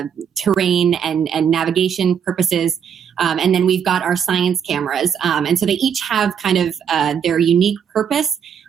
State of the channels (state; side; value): quieter; left; 7.8 dB